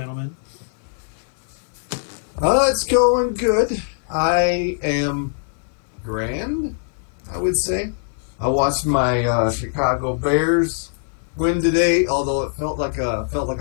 It's going good. I am grand, I would say. I watched my Chicago Bears win today, although it felt like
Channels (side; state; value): right; silent; 59 dB below the other